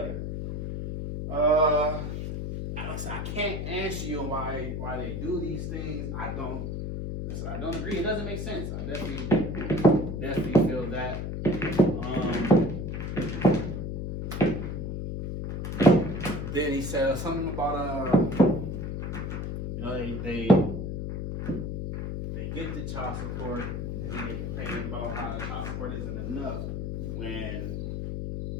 I can't answer you why they do these things. I don't agree. It doesn't make sense. I definitely feel that. Then he said something about you know, they get the child support and they get complaining about how the child support isn't enough when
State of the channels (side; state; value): left; noise; hum, 4 dB below the sound